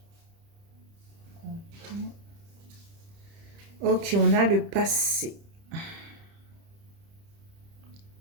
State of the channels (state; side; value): late; left; 30 ms